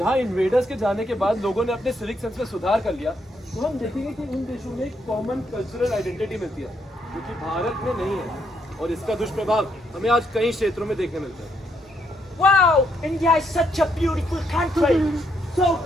इन्वेडर्स के जाने के बाद लोगों ने अपने सिविक सेंस में सुधार कर लिया, तो हम देखेंगे कि उन देशों में एक कॉमन कल्चरल आइडेंटिटी मिलती है जो कि भारत में नहीं है, और इसका दुष्प्रभाव हमें आज कई क्षेत्रों में देखने मिलता है। Wow, India is such a beautiful country. So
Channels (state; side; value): normal; both; correlation 0.75